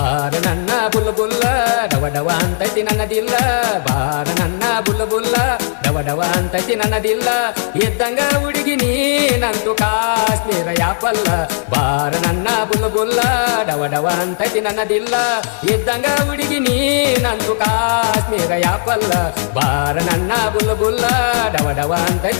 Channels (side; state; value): right; silent; digital silence